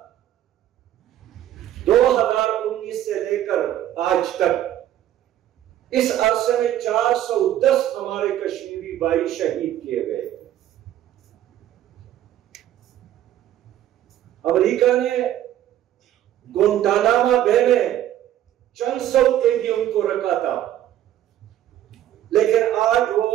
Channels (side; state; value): left; quieter; 12.2 dB